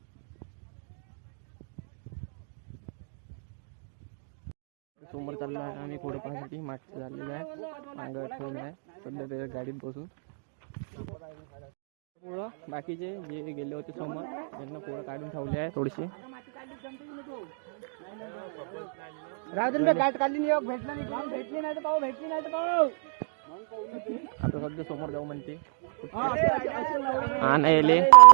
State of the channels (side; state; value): left; silent; digital silence